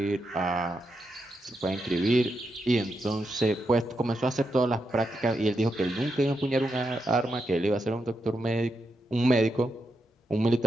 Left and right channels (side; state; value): both; normal; correlation 0.84